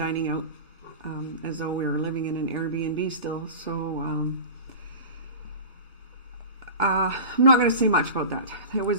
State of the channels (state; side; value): inverted; both; correlation -0.33